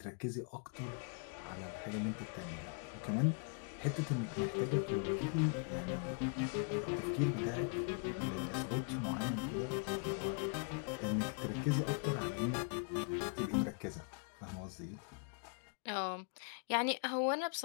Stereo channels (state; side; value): quieter; right; 39.0 dB